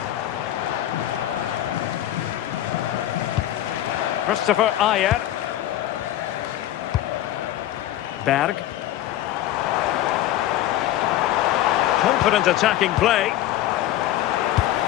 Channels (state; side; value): quieter; right; 13.4 dB